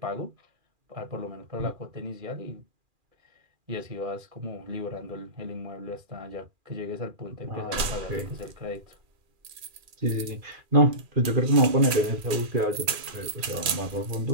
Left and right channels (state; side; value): late; left; 2.4 ms